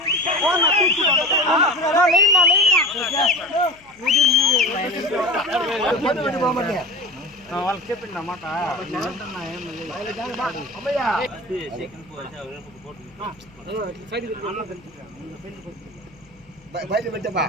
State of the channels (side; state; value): left; noise; hum, 28 dB below the sound